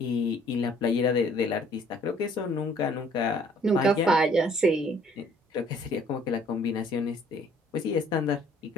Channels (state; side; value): normal; both; correlation 0.59